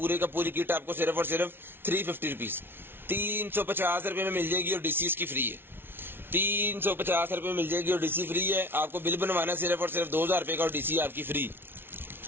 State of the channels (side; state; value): left; late; 0.11 ms